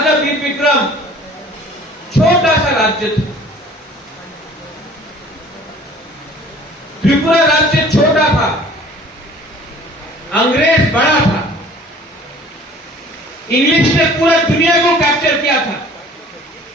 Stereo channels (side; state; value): both; normal; correlation 0.50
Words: वीर विक्रम छोटा सा राज्य था, त्रिपुरा राज्य छोटा था, अंग्रेज बड़ा था, इंग्लिश ने पूरा दुनिया को कैप्चर किया था,